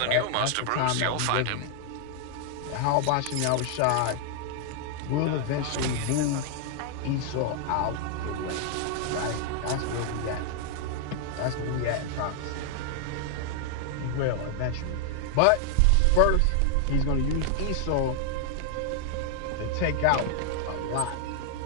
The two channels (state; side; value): different; both; correlation 0.00